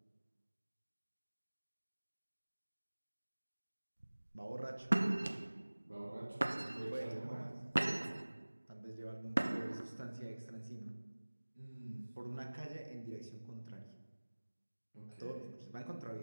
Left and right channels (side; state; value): both; inverted; correlation -1.00